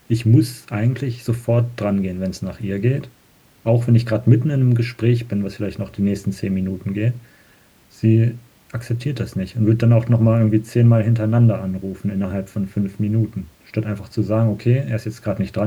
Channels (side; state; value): both; identical; correlation 1.00